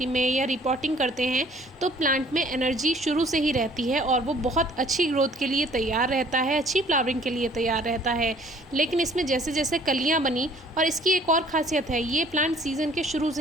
में या रिपोर्टिंग करते हैं, तो प्लांट में एनर्जी शुरू से ही रहती है और वो बहुत अच्छी ग्रोथ के लिए तैयार रहता है, अच्छी फ्लावरिंग के लिए तैयार रहता है। लेकिन इसमें जैसे जैसे कलियाँ बनी, और इसकी एक और ख़ासियत है, ये प्लांट सीज़न के शुरू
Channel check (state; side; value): normal; both; correlation 0.56